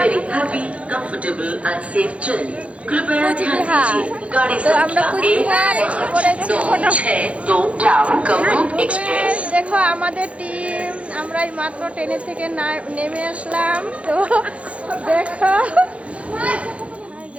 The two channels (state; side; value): late; left; 0.063 ms